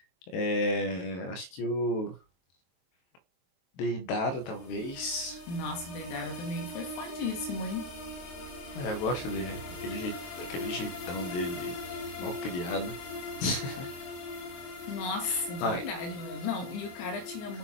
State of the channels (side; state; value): right; late; 23 ms